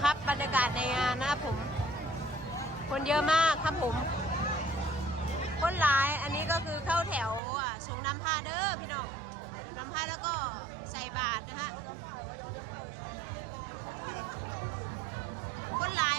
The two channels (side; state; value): left; drops out; at 7.4 s